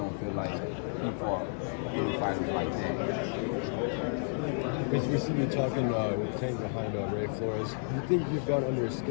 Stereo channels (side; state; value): right; silent; 57 dB below the other